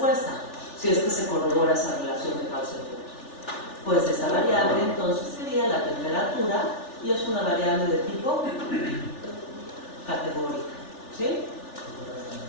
si es que se corrobora esa relación de causa y efecto. Pues esa variable entonces sería la temperatura y es una variable de tipo categórica. ¿Sí?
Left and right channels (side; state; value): right; late; 3.4 ms